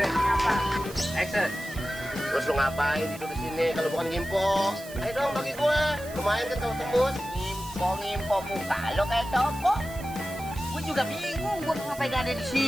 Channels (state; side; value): noise; right; hiss, 17 dB below the sound